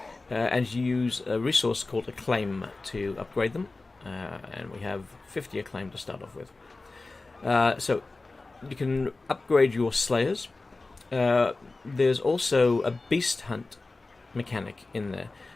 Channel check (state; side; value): quieter; right; 3.4 dB